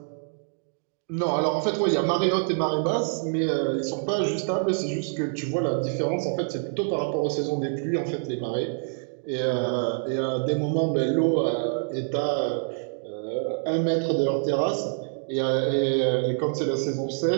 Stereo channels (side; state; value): left; silent; digital silence